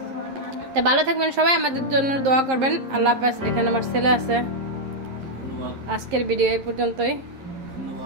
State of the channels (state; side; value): late; left; 11 ms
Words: তা ভালো থাকবেন সবাই, আমাদের জন্য দোয়া করবেন। আল্লাহ হাফেজ। এখানে আমার ছেলে আছে। আজকের ভিডিও এই পর্যন্তই।